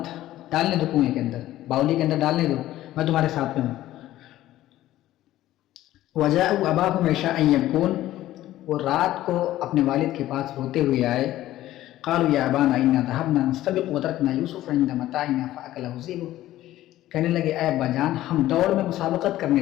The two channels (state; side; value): quieter; right; 14.6 dB